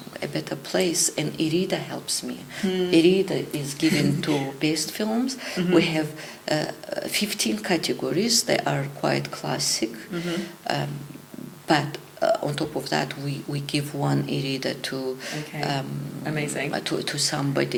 a better place, and Irida helps me. Irida is given to best films. We have 15 categories. They are quite classic, but on top of that, we give one e-reader to Amazing. to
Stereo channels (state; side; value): identical; both; correlation 1.00